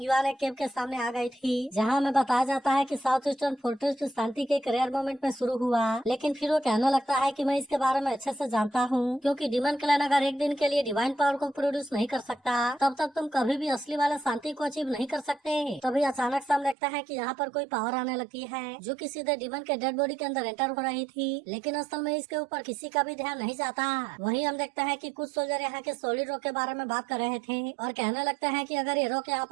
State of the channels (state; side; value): drops out; left; at 16.8 s